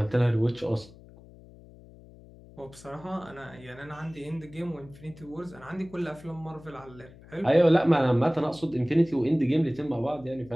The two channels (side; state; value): left; noise; hum, 21 dB below the sound